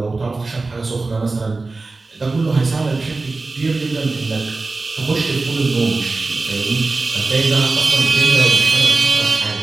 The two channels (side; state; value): left; quieter; 3.6 dB